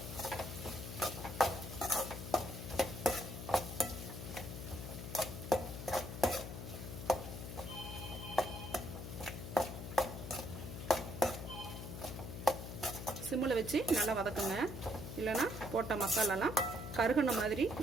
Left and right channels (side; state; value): left; noise; hum, 8 dB below the sound